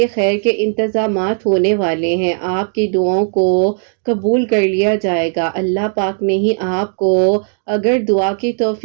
خیر کے انتظامات ہونے والے ہیں۔ آپ کی دعاؤں کو قبول کر لیا جائے گا۔ اللہ پاک نے ہی آپ کو اگر دعا کی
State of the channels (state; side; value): silent; left; digital silence